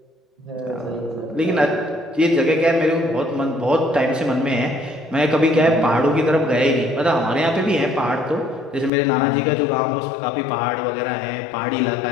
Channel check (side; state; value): right; drops out; at 8.9 s